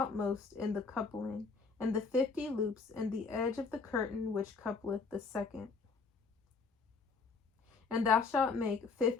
in the coupling, and the 50 loops in the edge of the curtain which coupleth the second. And thou shalt make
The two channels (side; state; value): right; quieter; 4.6 dB